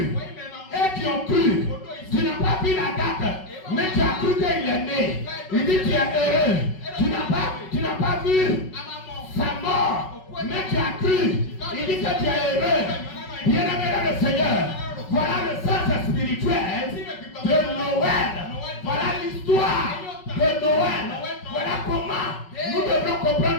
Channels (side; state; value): right; late; 5.4 ms